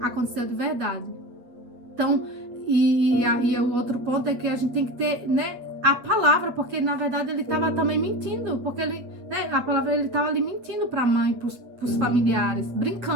aconteceu de verdade. Então, e aí o outro ponto é que a gente tem que ter, né, a palavra, porque na verdade ele estava também mentindo, porque ele, né, a palavra, ele estava ali mentindo para a mãe, para os familiares,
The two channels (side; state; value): left; late; 8.2 ms